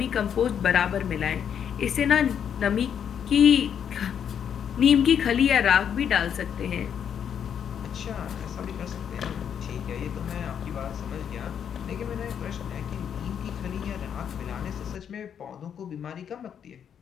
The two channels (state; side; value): quieter; right; 8.3 dB